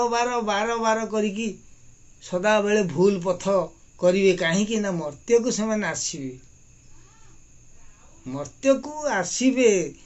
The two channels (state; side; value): identical; both; correlation 1.00